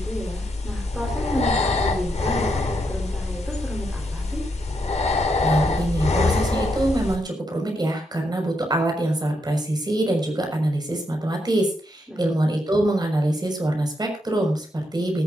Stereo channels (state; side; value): normal; both; correlation 0.80